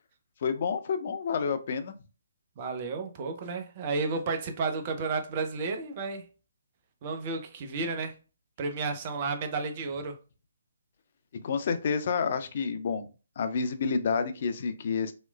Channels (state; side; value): inverted; both; correlation -0.62